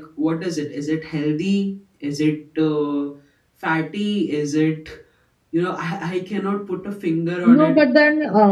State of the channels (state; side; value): identical; both; correlation 1.00